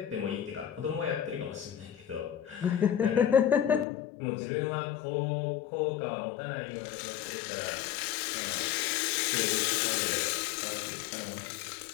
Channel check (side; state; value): right; drops out; at 3.9 s